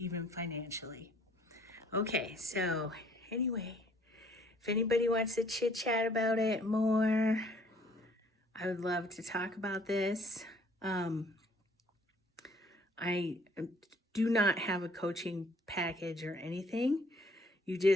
financially. Okay, so anyway, if anybody wants to chit chat about it more, I would love to talk about this. I do not have a coaching package or anything. You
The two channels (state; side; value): normal; both; correlation 0.59